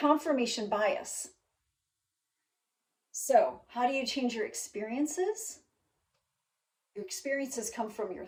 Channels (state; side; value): identical; both; correlation 1.00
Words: bias. So, how do you change your experiences? Your experiences come from your